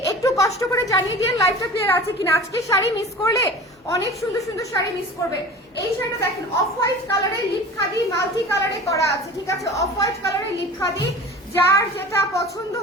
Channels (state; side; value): normal; both; correlation 0.38